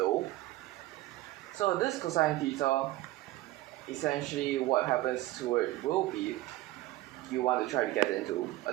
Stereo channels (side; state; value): left; quieter; 17.2 dB